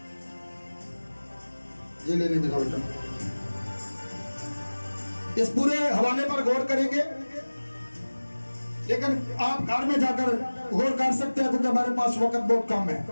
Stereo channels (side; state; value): both; inverted; correlation -1.00